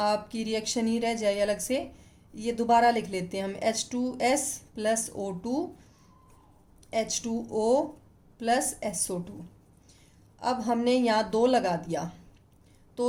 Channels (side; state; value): both; identical; correlation 1.00